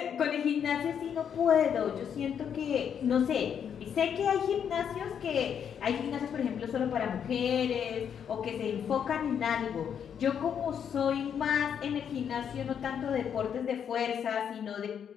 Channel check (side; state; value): right; quieter; 8.1 dB